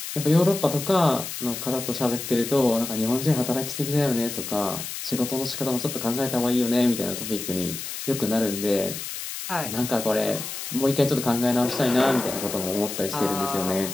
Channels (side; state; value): left; noise; hiss, 7 dB below the sound